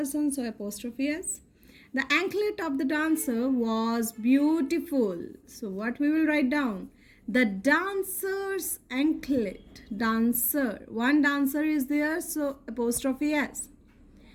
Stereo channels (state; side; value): identical; both; correlation 1.00